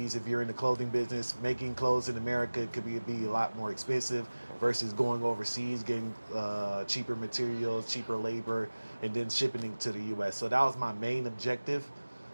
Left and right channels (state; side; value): inverted; both; correlation -1.00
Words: If you're in the clothing business, making clothes in America could be a lot more expensive versus going overseas, getting cheaper materials, cheaper labor, and then shipping it to the U.S. So that was my main objective.